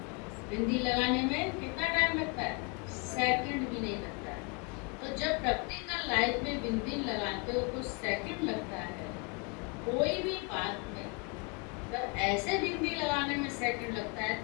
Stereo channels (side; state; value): right; quieter; 32.5 dB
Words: बिंदी लगाने में कितना टाइम लगता है? सेकंड भी नहीं लगता है। तो जब प्रैक्टिकल लाइफ में बिंदी लगाते हो तो सेकंड लगता है। कोई भी बात में जब ऐसे बिंदी लगाने में सेकंड लगता है